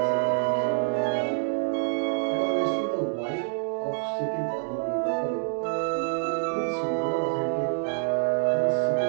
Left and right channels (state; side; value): silent; left; digital silence